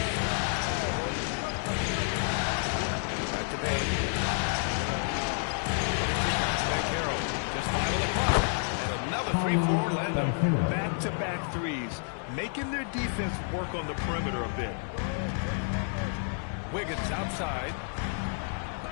Back to Bain. Carroll. Just 5 on the clock. And another 3 for Orlando. Back-to-back threes, making their defense work on the perimeter a bit. Wiggins outside.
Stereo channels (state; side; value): silent; right; 58 dB below the other